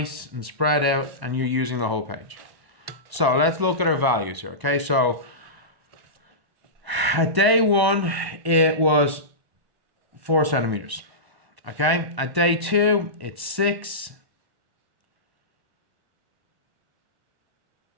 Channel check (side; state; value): left; late; 1.1 ms